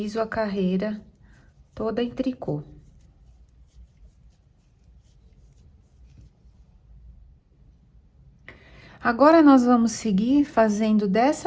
a carreira toda em tricô. Agora, nós vamos seguir fazendo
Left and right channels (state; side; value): identical; both; correlation 1.00